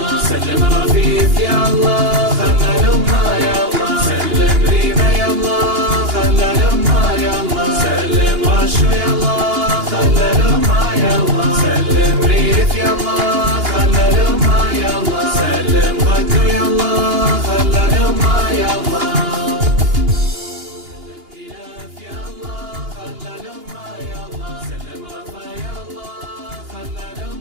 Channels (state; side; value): late; left; 2.8 ms